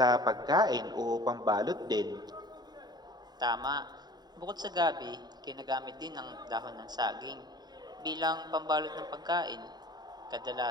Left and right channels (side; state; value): left; late; 0.20 ms